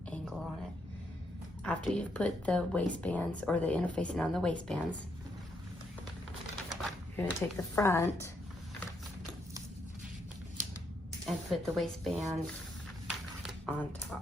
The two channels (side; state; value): both; normal; correlation 0.76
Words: angle on it. After you've put the waistbands or the interfacing on the waistbands, you're gonna take the front and put the waistband on